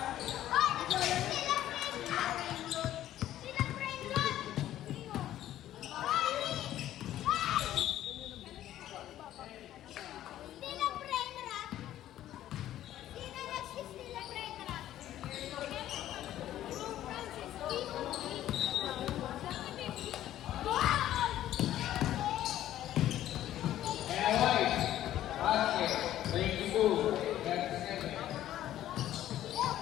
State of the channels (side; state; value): right; quieter; 12.8 dB